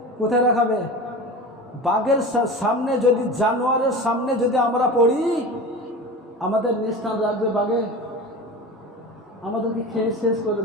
কোথায় রাখাবে? বাঘের সামনে যদি, জানোয়ারের সামনে যদি আমরা পড়ি, আমাদের নিস্থান রাখবে বাঘে, আমাদেরকে খেয়ে শেষ করে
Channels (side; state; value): both; normal; correlation 0.32